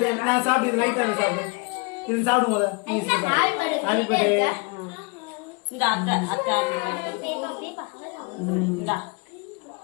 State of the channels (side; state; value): right; quieter; 29.8 dB